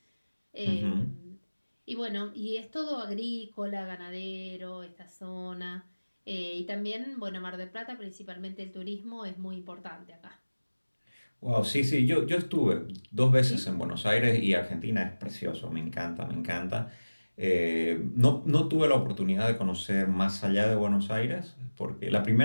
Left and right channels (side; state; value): both; inverted; correlation -1.00